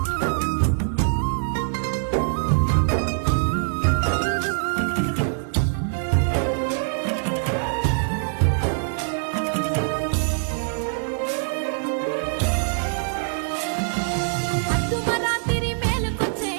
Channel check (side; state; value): left; silent; digital silence